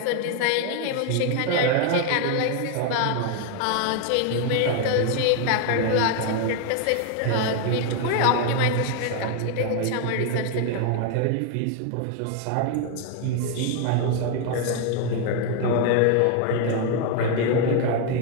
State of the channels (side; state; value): both; different; correlation 0.01